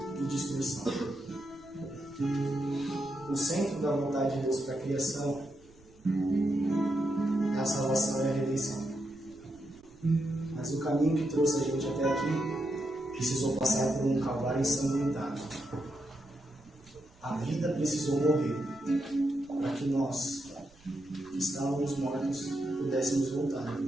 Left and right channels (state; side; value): noise; right; rumble, 27 dB below the sound